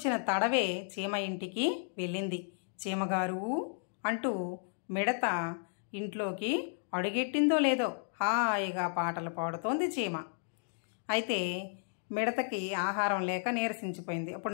తడవే చీమ ఇంటికి వెళ్ళింది. చీమగారు అంటూ మిడత ఇంట్లోకి అడుగెట్టిందో లేదో హాయిగా పాటలు పాడుతోంది చీమ. అయితే మిడతకి ఆహారం లేక నీరసించిపోయింది.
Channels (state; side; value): silent; right; 55 dB below the other